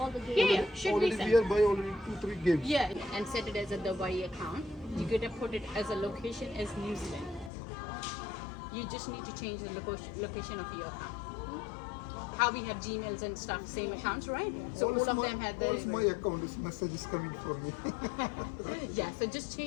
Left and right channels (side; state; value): right; drops out; at 7.5 s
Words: the games. Yeah, should already be we are buy already 2-3 games. Yeah, and set it as a Dubai account. You gotta put it as a location as New Zealand. You just need to change the location of your account. How we have Gmails and stuff, same accounts, right? So all of them have all my account. This message is coming for me. Yeah, so just